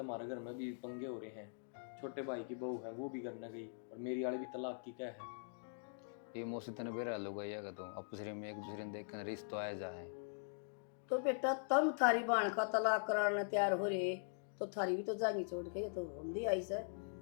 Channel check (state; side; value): silent; right; digital silence